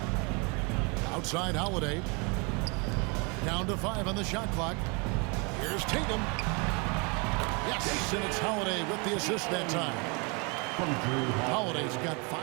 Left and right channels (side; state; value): left; quieter; 31.3 dB